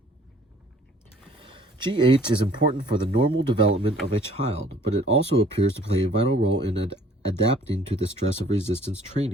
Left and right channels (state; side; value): normal; both; correlation 0.55